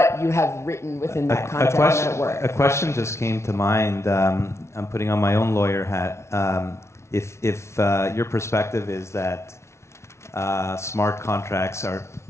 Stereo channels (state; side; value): late; right; 0.13 ms